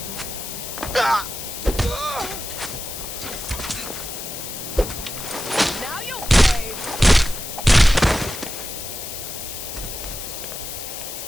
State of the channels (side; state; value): left; noise; hiss, 8 dB below the sound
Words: Now you'll pay!